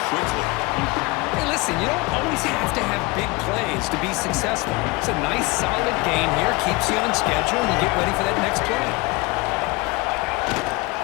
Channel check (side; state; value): right; quieter; 24.1 dB